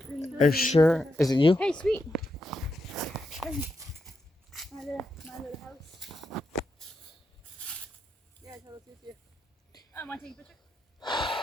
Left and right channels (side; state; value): both; normal; correlation 0.84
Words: Are you sure? Is it you? Hey, sweet. My little house. Yeah, I told Cynthia. Want to take a picture?